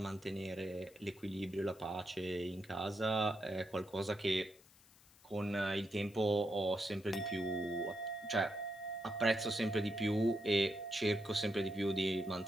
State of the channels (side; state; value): left; noise; hiss, 26 dB below the sound